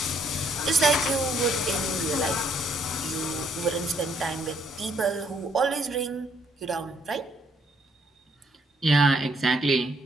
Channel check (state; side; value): normal; both; correlation 0.68